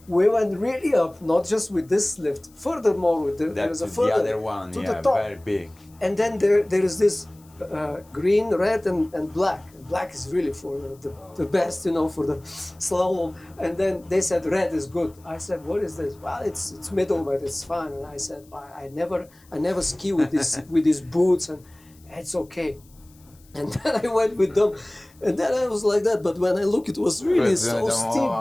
We went really up, not just with this lift. Furthermore, there was a further the other one, to the top. Very big. And then there is this green, red, and black. Black is really for the best, for the slalom. And then they said red is good. I said, what is this? Well, it's middle, but it's fine. And I said, I never ski with these boots, and it's okay. And then I went with them, and then I was like that. But when I look, it was really so steep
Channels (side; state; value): left; noise; hiss, 29 dB below the sound